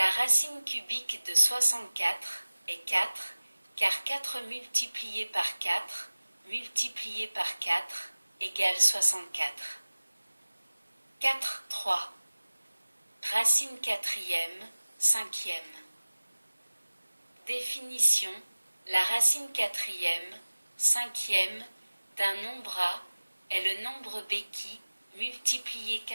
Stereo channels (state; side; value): inverted; both; correlation -1.00